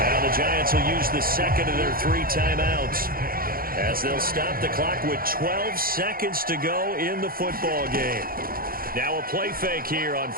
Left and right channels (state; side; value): late; left; 0.42 ms